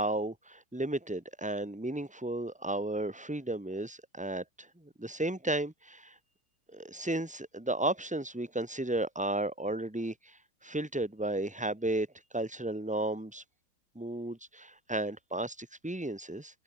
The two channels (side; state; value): both; normal; correlation 0.38